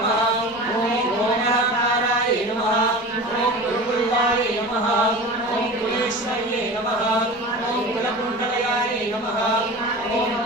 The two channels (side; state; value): both; normal; correlation 0.34